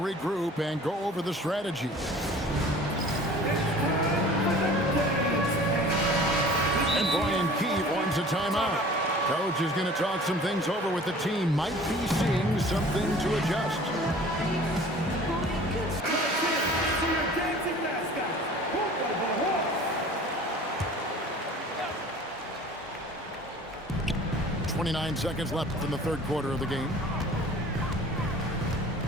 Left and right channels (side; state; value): both; normal; correlation 0.46